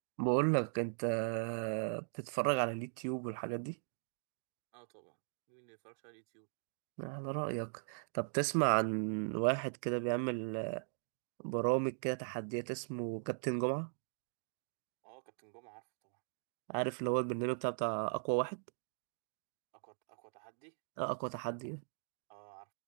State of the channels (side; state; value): left; silent; digital silence